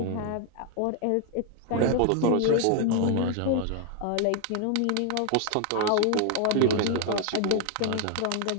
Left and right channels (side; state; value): both; different; correlation 0.00